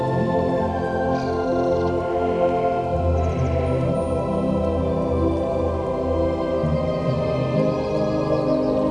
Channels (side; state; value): left; noise; hum, 23 dB below the sound